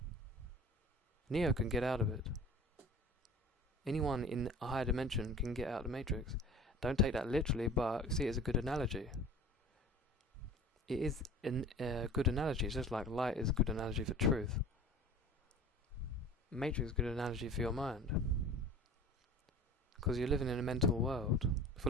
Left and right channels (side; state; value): both; normal; correlation 0.41